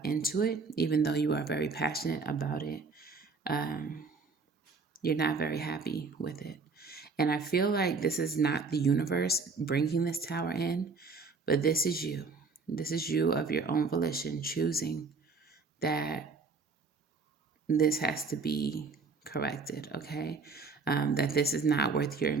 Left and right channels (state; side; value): quieter; left; 4.4 dB